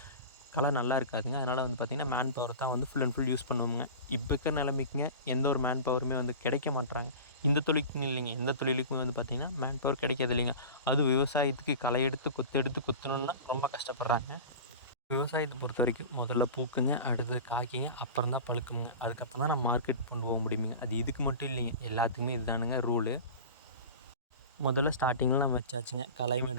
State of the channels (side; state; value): both; inverted; correlation -0.34